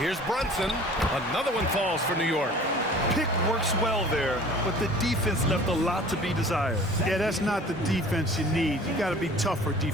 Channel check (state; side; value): normal; both; correlation 0.46